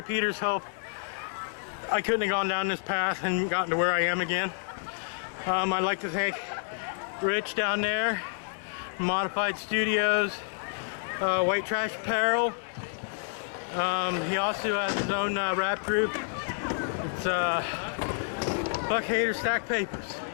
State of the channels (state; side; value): silent; right; digital silence